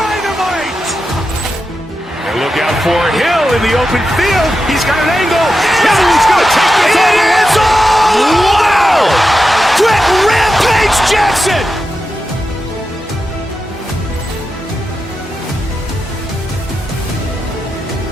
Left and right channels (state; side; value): normal; both; correlation 0.89